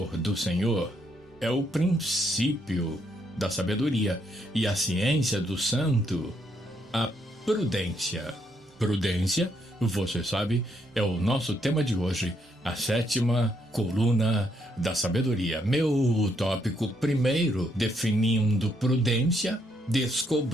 do Senhor é o princípio da sabedoria e a ciência do santo, a prudência. Prudência, você sabe, é o nosso tema de hoje, a sétima coluna da sabedoria. Meu tópico primeiro, definindo prudência,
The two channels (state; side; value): normal; both; correlation 0.74